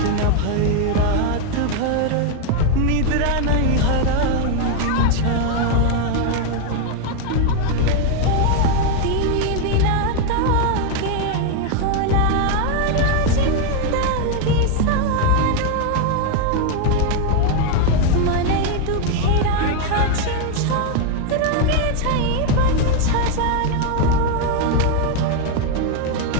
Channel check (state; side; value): different; both; correlation 0.01